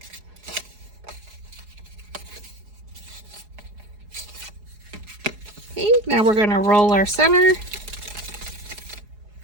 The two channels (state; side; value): late; left; 4.8 ms